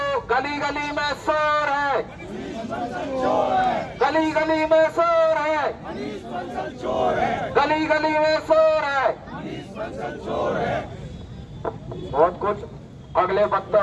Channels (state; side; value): identical; both; correlation 1.00